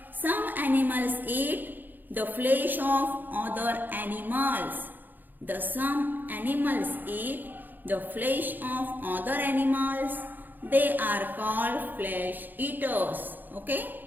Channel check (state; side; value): late; left; 0.088 ms